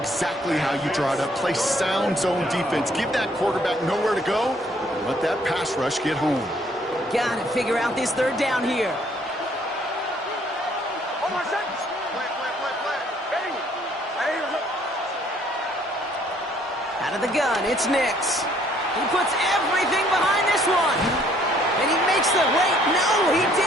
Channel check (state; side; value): normal; both; correlation 0.63